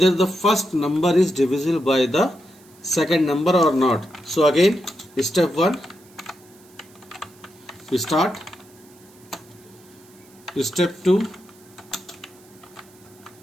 the first number is divisible by the second number or not. So again step 1, we start. Step 2,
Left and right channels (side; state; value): right; noise; hiss, 27 dB below the sound